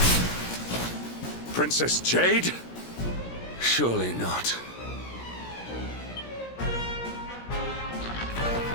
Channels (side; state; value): right; late; 17 ms